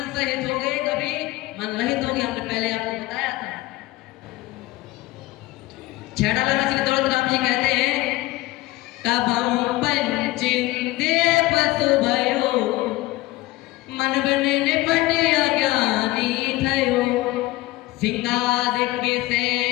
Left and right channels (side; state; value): right; quieter; 18.8 dB